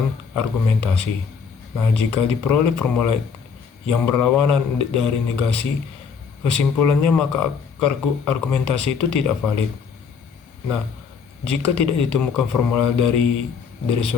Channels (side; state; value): right; quieter; 6.1 dB